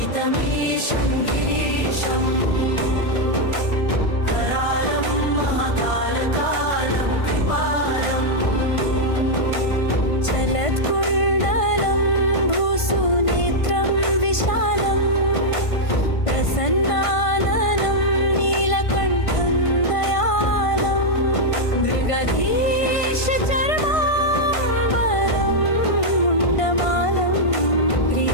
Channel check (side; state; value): right; late; 1.5 ms